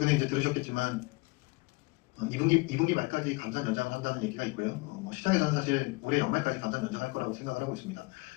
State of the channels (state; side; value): quieter; right; 25.4 dB